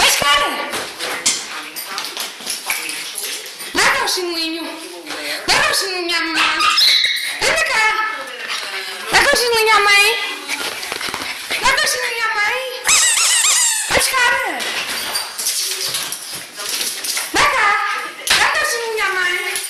cara! Dá cá o chinelinho. Dá cá o chinelinho à mamãe. Anda cá. Dá cá o chinelinho à mãe. Dá cá o chinelinho à mãe. Mas, cara! Dá cá. Dá cá o chinelinho à mãe.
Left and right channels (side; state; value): both; identical; correlation 1.00